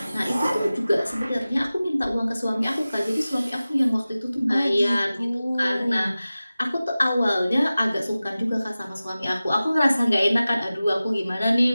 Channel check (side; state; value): both; inverted; correlation -0.96